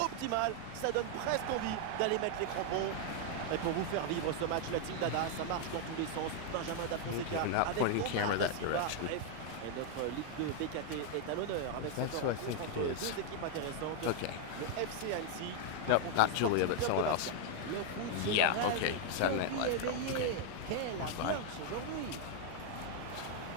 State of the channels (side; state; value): both; different; correlation 0.00